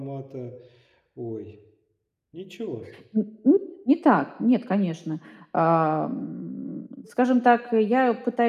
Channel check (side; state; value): both; identical; correlation 1.00